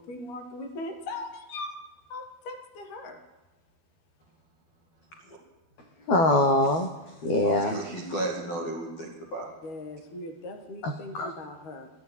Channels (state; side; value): late; right; 12 ms